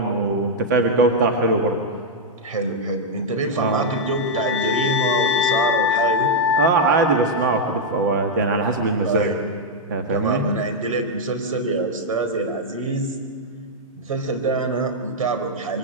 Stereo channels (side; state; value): both; normal; correlation -0.04